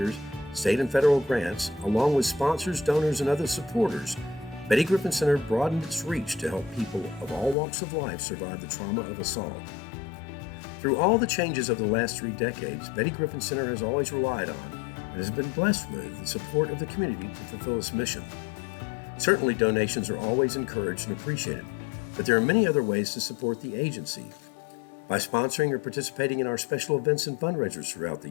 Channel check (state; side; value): drops out; right; at 7.6 s